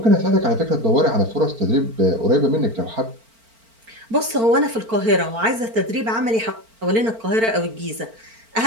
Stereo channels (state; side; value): late; left; 4.4 ms